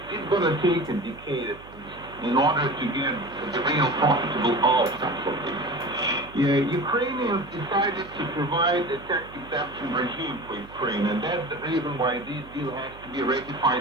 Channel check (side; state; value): right; noise; hum, 20 dB below the sound